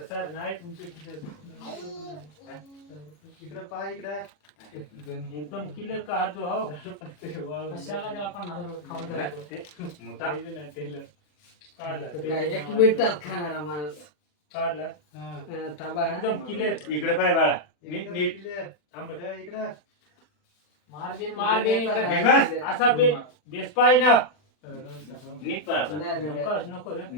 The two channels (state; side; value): late; right; 40 ms